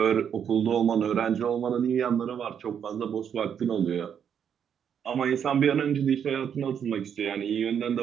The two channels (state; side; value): quieter; left; 8.2 dB